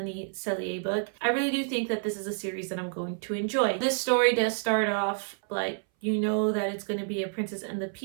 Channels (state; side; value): silent; left; 59 dB below the other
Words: Sellier book. I really do think that this is a series that I'm going to enjoy. This story does start off like you know that it's going to be a Princess and the